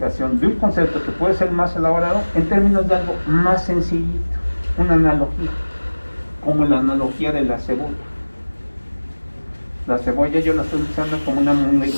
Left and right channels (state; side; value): inverted; both; correlation -1.00